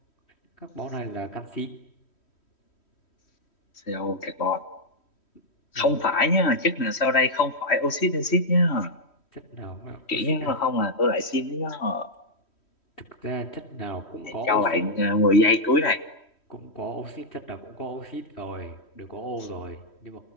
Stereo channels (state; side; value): late; right; 3.1 ms